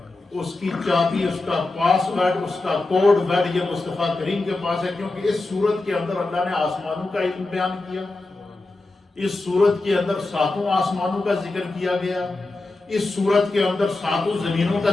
اس کی چابی، اس کا پاس ورڈ، اس کا کوڈ ورڈ یہ مصطفیٰ کریم کے پاس ہے، کیونکہ اس سورت کے اندر اللہ نے آسمانوں کا علم بیان کیا، اس سورت کے اندر 7 آسمانوں کا ذکر کیا گیا، اس سورت کے اندر 7 زمینوں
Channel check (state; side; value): quieter; right; 3.1 dB